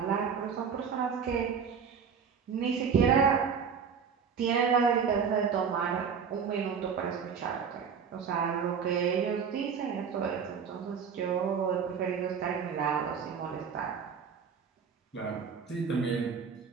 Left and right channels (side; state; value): left; quieter; 6.6 dB